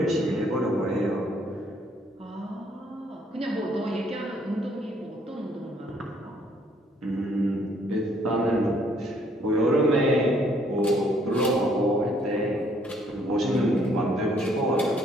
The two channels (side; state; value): both; normal; correlation 0.65